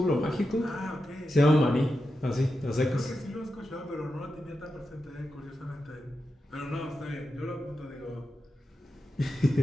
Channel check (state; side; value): normal; both; correlation 0.89